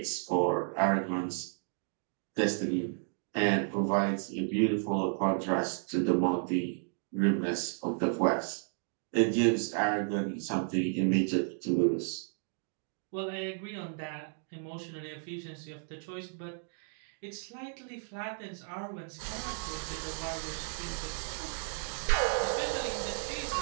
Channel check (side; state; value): left; silent; 56 dB below the other